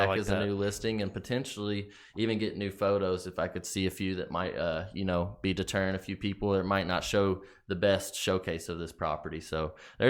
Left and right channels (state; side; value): identical; both; correlation 1.00